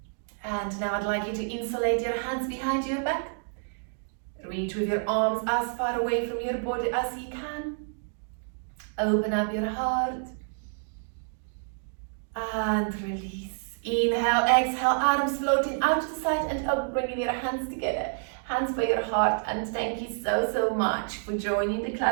And now I'd like you to insulate your hands behind your back. Reach with your arms as far away from your body as you can. Open up your heart. And release. Inhale, exhale, arms floating out to the side and up, bringing your hands together. Hands by your heart, and thank you so much for joining the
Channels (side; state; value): left; silent; 59 dB below the other